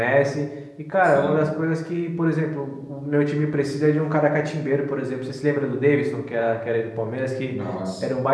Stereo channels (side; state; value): both; identical; correlation 1.00